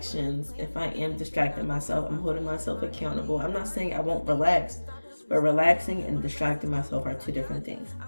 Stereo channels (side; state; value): both; inverted; correlation -1.00